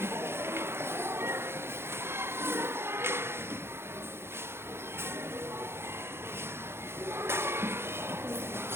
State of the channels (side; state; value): left; late; 0.12 ms